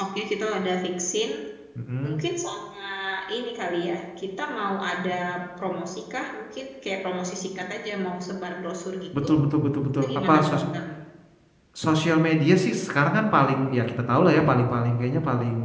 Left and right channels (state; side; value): identical; both; correlation 1.00